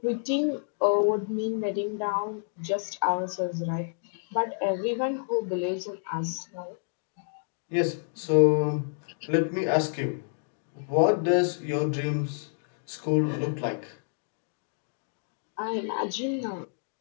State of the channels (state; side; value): silent; right; digital silence